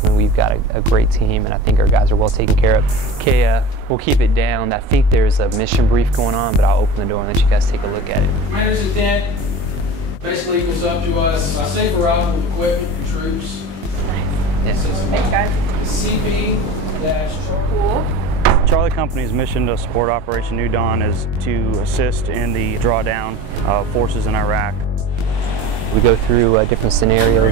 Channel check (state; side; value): late; left; 21 ms